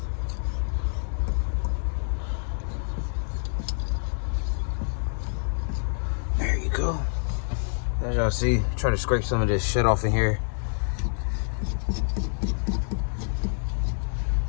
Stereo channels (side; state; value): right; silent; 59 dB below the other